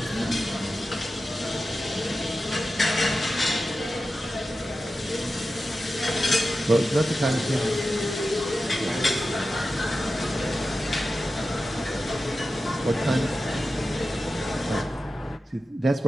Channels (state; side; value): normal; both; correlation 0.92